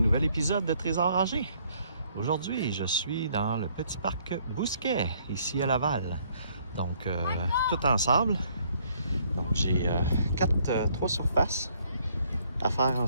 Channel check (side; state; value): both; inverted; correlation -0.65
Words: épisode de Trésor Âgé. Aujourd'hui, je suis dans le petit parc Bousquet, ici à Laval. Donc, tout ensemble. Donc, j'ai trois surfaces à faire